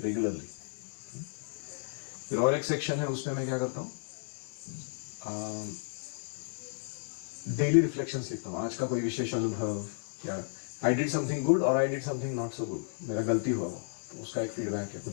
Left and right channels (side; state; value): right; silent; digital silence